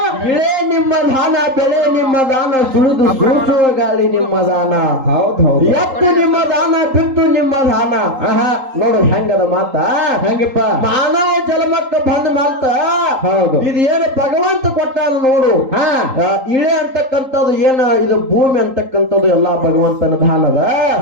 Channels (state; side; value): late; left; 3.8 ms